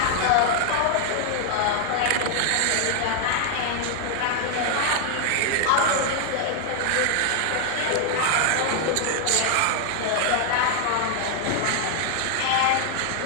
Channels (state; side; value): different; both; correlation 0.00